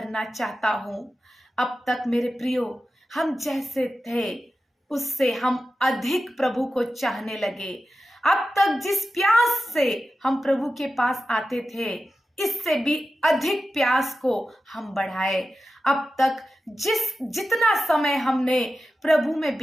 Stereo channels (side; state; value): both; normal; correlation 0.92